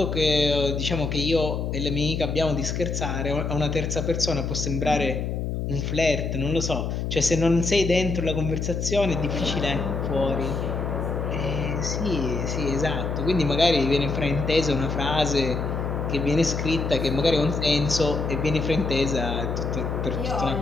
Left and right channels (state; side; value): noise; left; hum, 2 dB below the sound